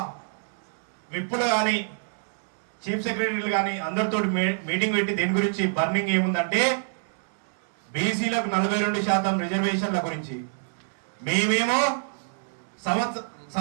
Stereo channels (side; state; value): left; silent; digital silence